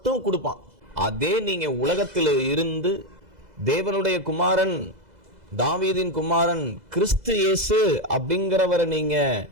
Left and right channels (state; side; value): late; left; 2.0 ms